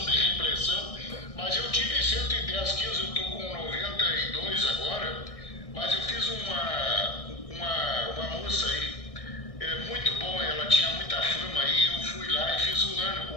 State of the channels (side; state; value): right; late; 1.6 ms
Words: de repressão. Mas eu tive 110 quilos, eu estou com 92 agora. Mas eu fiz uma moça aí, muito boa, ela tinha muita fama aí. Eu fui lá e fiz um ano